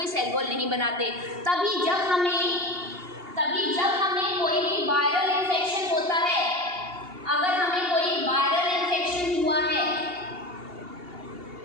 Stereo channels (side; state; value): left; late; 2.8 ms